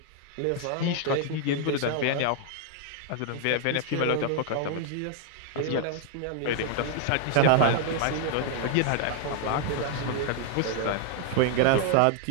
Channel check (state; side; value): different; both; correlation 0.00